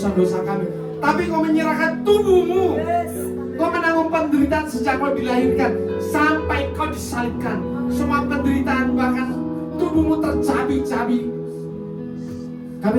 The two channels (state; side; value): identical; both; correlation 1.00